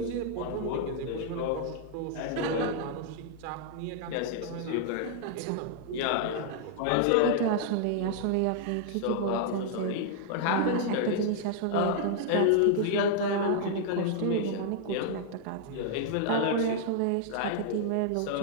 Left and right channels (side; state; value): both; different; correlation -0.01